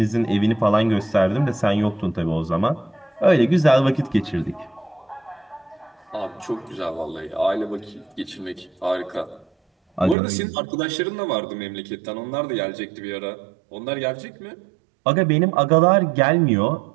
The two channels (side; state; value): left; drops out; at 10.2 s